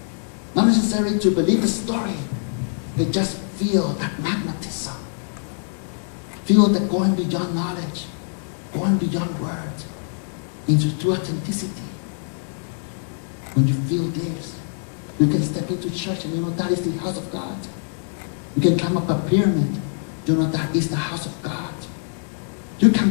Not necessarily to believe the story, but just feel that magnetism. Feel that going beyond knowledge, going beyond words, into true authenticity. When you feel this, you can step into church and you know that is the house of God. You can climb up a pyramid, you know that is the house of God. You can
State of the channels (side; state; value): right; silent; digital silence